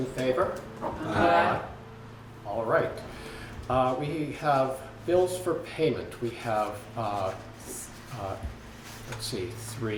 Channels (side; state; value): both; identical; correlation 1.00